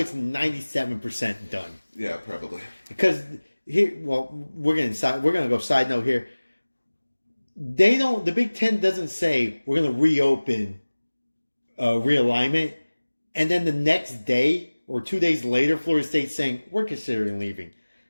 97% done. Yeah, probably. Because here, we're going to go side note here. The Big Ten doesn't say we're going to reopen realignment, and then the next day or 2 days later, Florida State's saying we're considering leaving.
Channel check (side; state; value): both; inverted; correlation -1.00